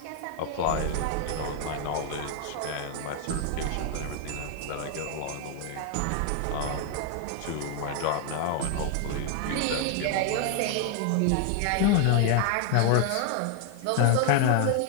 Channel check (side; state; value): both; different; correlation 0.00